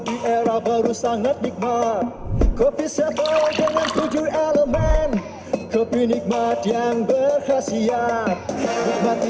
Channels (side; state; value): both; identical; correlation 1.00